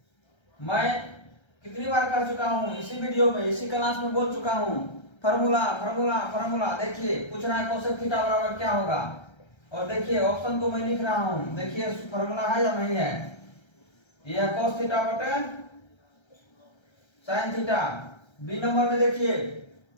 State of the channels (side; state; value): right; late; 1.3 ms